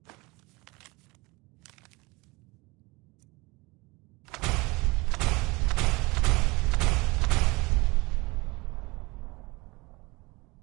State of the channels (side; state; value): left; quieter; 24.5 dB